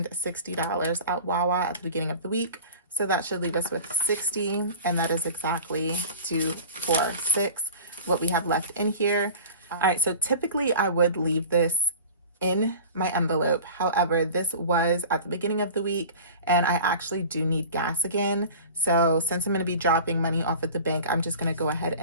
$60 at Wawa at the beginning of the week. So that should leave us with 60. And that is exactly 246, what we have left in here. All right, so typically I would leave this in my envelope. However, this was at the beginning of the week and I actually do need gas again. So since I'm going to be dropping money off at the bank, I'm just going to go ahead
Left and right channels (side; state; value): both; inverted; correlation -0.39